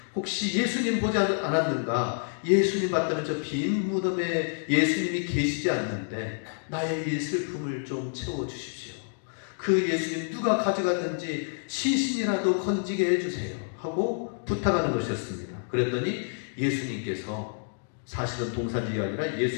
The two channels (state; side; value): silent; right; digital silence